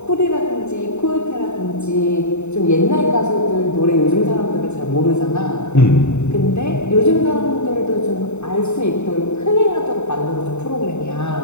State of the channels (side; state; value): right; late; 0.82 ms